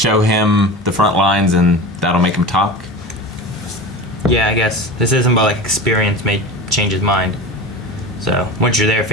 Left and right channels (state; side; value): normal; both; correlation 0.31